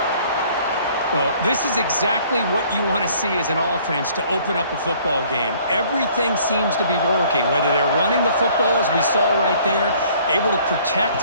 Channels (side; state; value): both; inverted; correlation -0.57